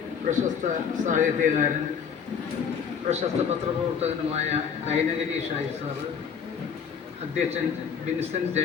പ്രശസ്ത സാഹിത്യകാരൻ, പ്രശസ്ത പത്രപ്രവർത്തകനുമായ കൈനഗിരി ഷായി സാറ്, അധ്യക്ഷൻ Vincent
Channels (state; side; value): quieter; right; 7.0 dB